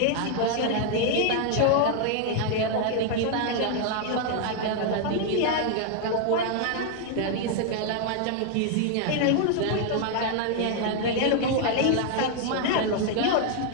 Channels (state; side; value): different; both; correlation 0.00